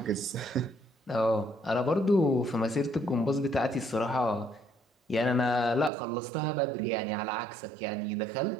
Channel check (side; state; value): left; drops out; at 5.9 s